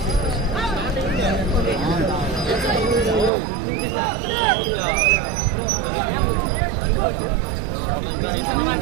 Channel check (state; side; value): drops out; left; at 3.3 s